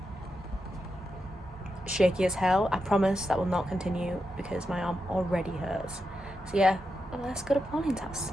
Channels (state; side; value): normal; both; correlation 0.86